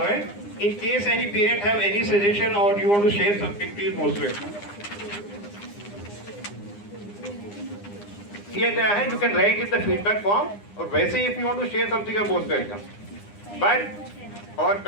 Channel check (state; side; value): late; right; 9.8 ms